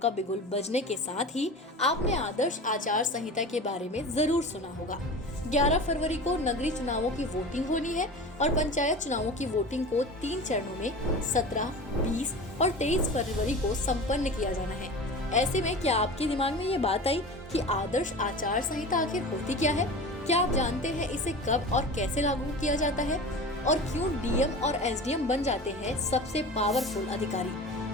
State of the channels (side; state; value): both; normal; correlation 0.33